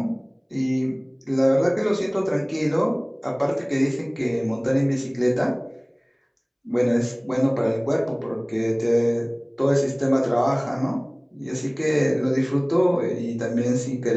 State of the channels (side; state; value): both; identical; correlation 1.00